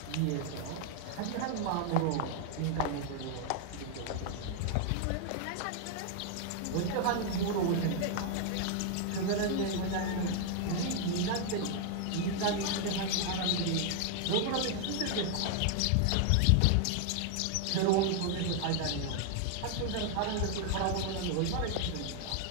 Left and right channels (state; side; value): different; both; correlation 0.00